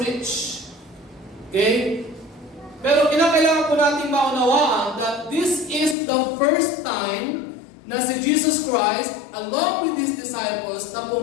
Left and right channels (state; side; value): drops out; right; at 6.0 s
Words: Okay? Pero kinakailangan po natin maunawaan that this is the first time na si Jesus Christ, along with His disciples, na